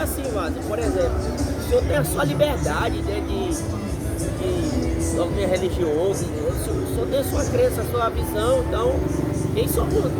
Vaz, por exemplo, o senhor tem a sua liberdade, né, de doctrina religiosa, né? O senhor tem a sua crença, a sua visão, então quem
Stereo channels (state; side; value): identical; both; correlation 1.00